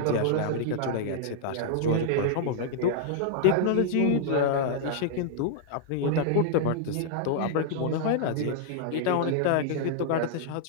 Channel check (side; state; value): both; different; correlation -0.01